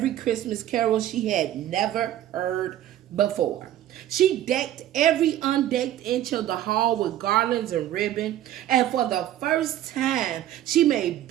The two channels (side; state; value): left; quieter; 12.6 dB